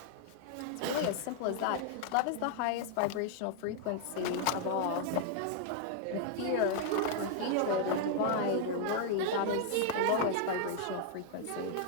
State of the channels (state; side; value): different; both; correlation 0.00